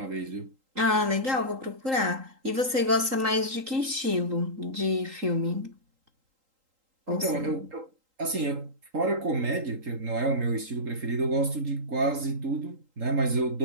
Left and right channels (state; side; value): late; left; 3.8 ms